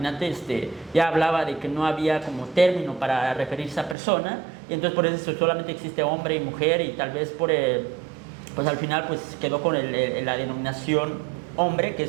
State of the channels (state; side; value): drops out; left; at 4.0 s